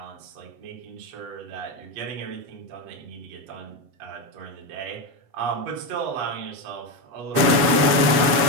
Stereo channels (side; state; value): left; late; 7.8 ms